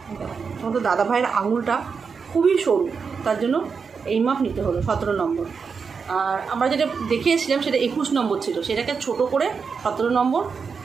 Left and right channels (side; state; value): left; quieter; 5.6 dB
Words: তোমাদের দাদাভাইয়ের আঙুলটা খুবই সরু, তার জন্য এই মাপ নিতে হলো 17 নম্বর। আর আমরা যেটা দেখিয়েছিলাম সেটা 21 নম্বর ছিল, সেটাকে ছোট করে 17 নম্বর